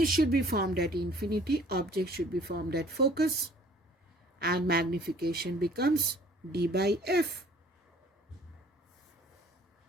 should be formed at infinity, object should be formed at focus, and magnification becomes D by F.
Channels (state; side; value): normal; both; correlation 0.54